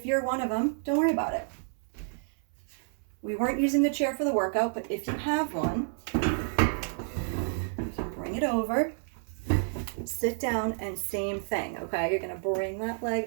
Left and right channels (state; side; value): silent; left; 58 dB below the other